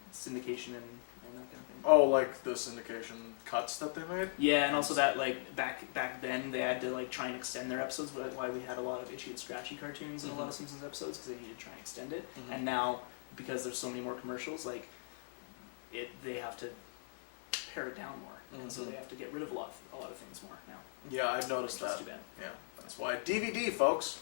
syndication and that kind of thing. Oh, like the syndication cuts that they made? Yeah, and also that, like, back then, they had to, like, try and extend their episodes, why we had a lot of itchy and scratchy cartoons in a lot of Simpsons episodes, because they needed to try and extend it. And now, because there's so many more commercials, like, they have to pare it down more, and so they have to get rid of a lot of things more now. Yeah, I've noticed Which is that. too bad. Yeah, that's why. DVD, folks.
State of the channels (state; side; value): silent; right; 52 dB below the other